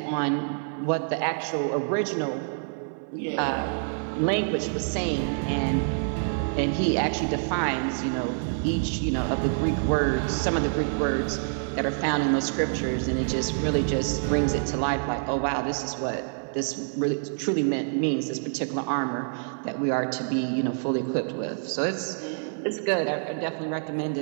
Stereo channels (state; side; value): silent; left; 56 dB below the other